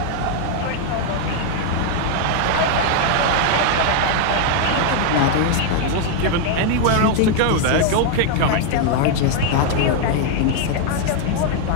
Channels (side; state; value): both; different; correlation 0.00